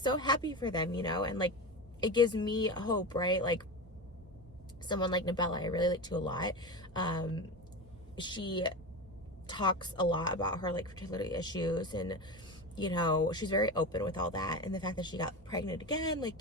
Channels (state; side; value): normal; both; correlation 0.24